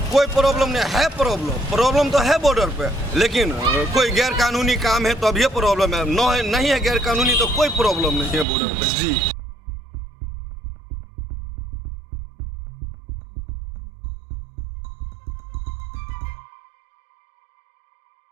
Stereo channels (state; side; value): drops out; left; at 8.5 s